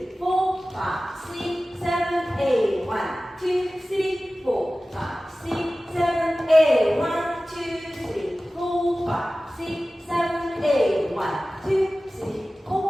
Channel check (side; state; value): both; normal; correlation 0.96